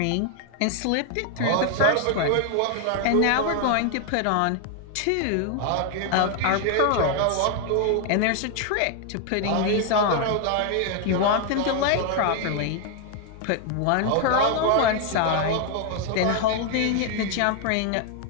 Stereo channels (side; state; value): both; different; correlation 0.00